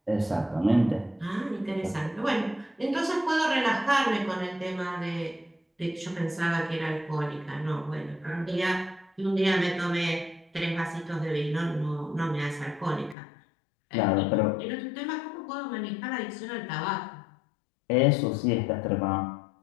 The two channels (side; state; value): right; drops out; at 13.2 s